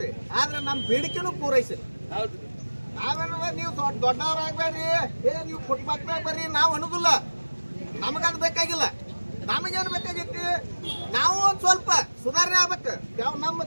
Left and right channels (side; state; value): both; inverted; correlation -1.00